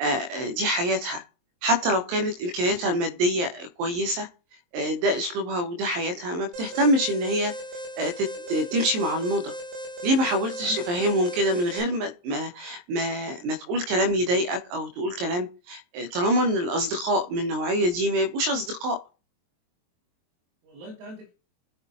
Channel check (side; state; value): left; late; 23 ms